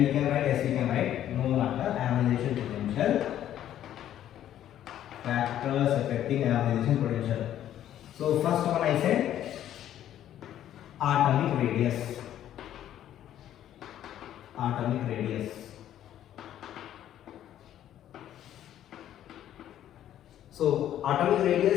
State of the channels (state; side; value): quieter; right; 11.5 dB